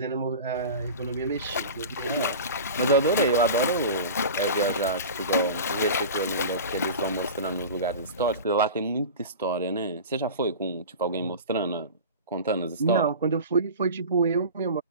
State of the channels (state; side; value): inverted; both; correlation -0.33